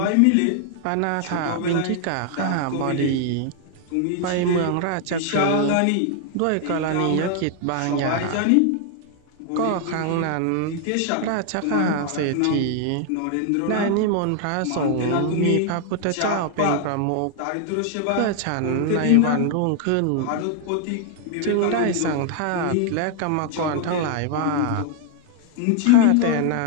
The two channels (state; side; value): different; both; correlation 0.00